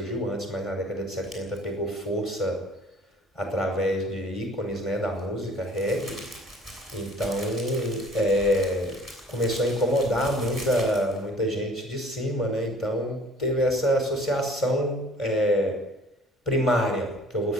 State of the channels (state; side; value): normal; both; correlation 0.51